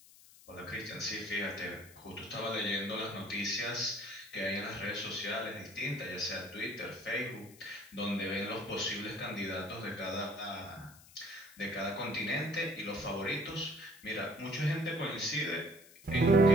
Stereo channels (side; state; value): left; noise; hiss, 22 dB below the sound